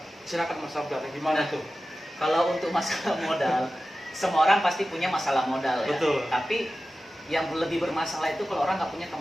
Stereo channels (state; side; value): normal; both; correlation 0.95